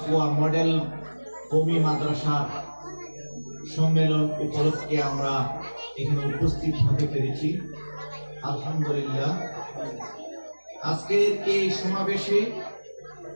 মডেল কওমি মাদ্রাসার সম্মেলন উপলক্ষে আমরা এখানে উপস্থিত হতে পেরেছি। আলহামদুলিল্লাহ। আজকের এই সমাবেশে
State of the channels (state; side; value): inverted; both; correlation -1.00